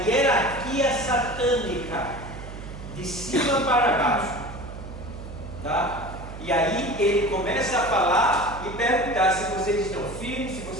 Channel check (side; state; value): right; noise; hum, 11 dB below the sound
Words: satânica, de cima para baixo. Tá? E aí ele começa a falar e perguntar se vocês estão firmes, se